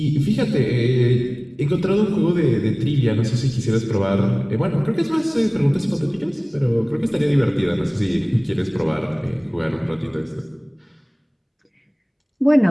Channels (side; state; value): both; identical; correlation 1.00